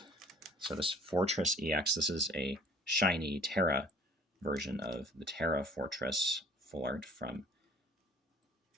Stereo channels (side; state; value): both; normal; correlation 0.51